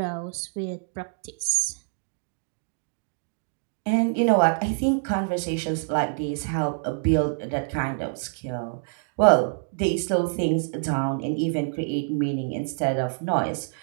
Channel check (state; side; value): silent; left; 61 dB below the other